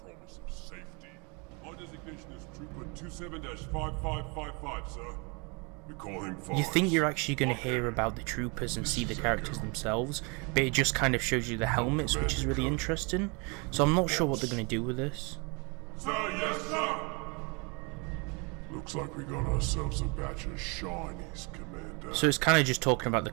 of safety. My designation is Trooper 27-5555, sir. We call him Forrest. You think you're actually going to hear about the troopers and see the characters themselves, but it just kind of shows you the helmets, which is really interesting. So I'm not sure what they're going to do with this. Sir, yes, sir! Looks like we got ourselves a batch of shinies, Commander. So it's kind of just talking about the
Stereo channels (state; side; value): quieter; left; 31.5 dB